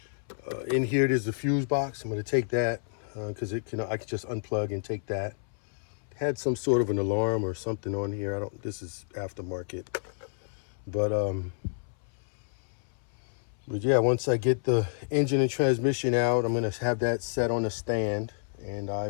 here. There's the fuse box. I'm going to take that because I can just unplug and take that. Had some sort of an alarm or something on here. This is aftermarket, but yeah, once I get the engine and transmission out, I'm going to have that set on a stand, and I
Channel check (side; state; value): right; silent; 58 dB below the other